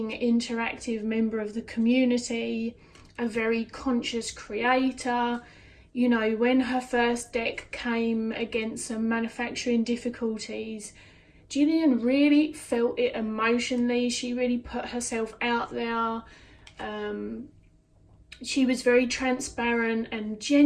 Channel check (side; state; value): both; identical; correlation 1.00